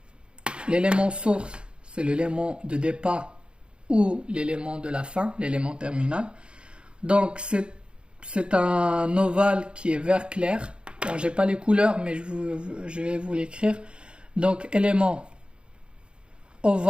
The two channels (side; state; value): left; late; 0.054 ms